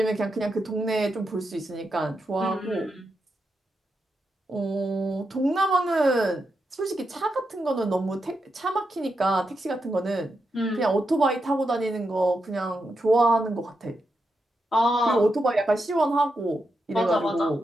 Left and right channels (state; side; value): normal; both; correlation 0.85